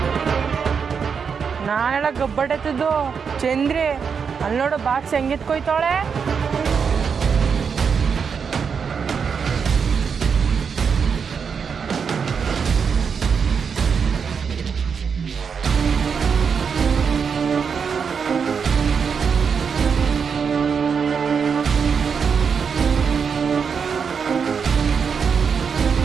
ನಾನೆಲ್ಲ ಗಬ್ಬಡತ್ತದು ಚಂದ್ರಿ ಅಲ್ಲಿ ನೋಡು ಬಾಕ್ಸ್ ಹೆಂಗಿತ್ಕೊಯ್ತಾಳೆ.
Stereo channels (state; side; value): quieter; left; 6.3 dB